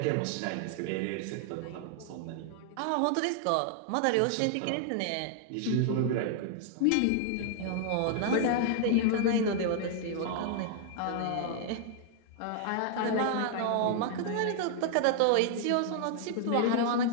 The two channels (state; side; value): different; both; correlation 0.00